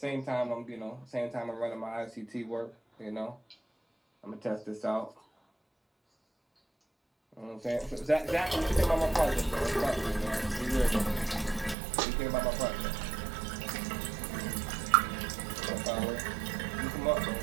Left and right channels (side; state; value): left; drops out; at 11.8 s